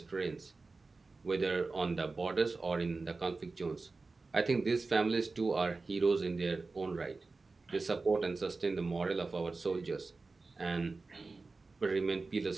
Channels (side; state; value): left; quieter; 3.8 dB